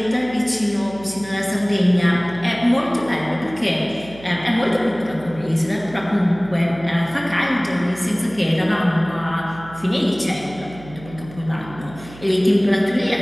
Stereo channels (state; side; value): noise; right; hum, 18 dB below the sound